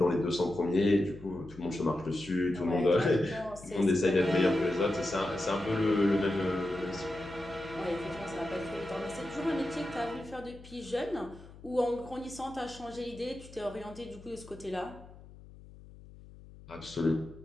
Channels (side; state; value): left; noise; hum, 19 dB below the sound